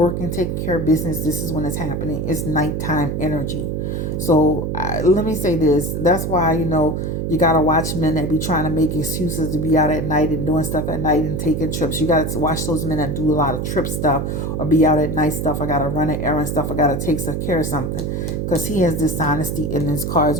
taking care of business, this is when it's happening. It's nighttime energy. So let me say this. That's why, you got to watch men that be trying to make excuses to be out at night and doing stuff at night and taking trips. You got to watch those men that do a lot of trip stuff or be out at night stuff. I got to run an errand stuff. I got to take care of something, because he has dishonesty in his cards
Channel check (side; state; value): right; noise; hum, 2 dB below the sound